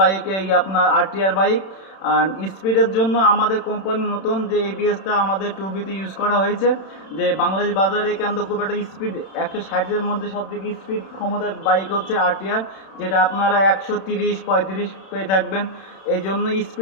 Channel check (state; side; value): late; right; 31 ms